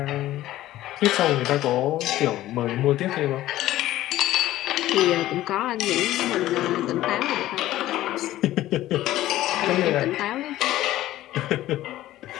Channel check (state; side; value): quieter; right; 14.8 dB